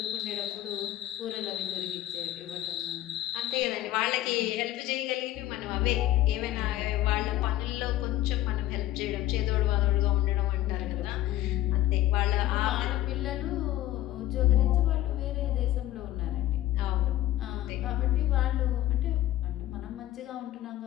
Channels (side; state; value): right; quieter; 14.2 dB